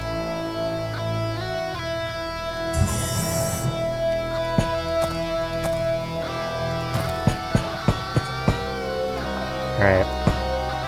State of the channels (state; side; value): identical; both; correlation 1.00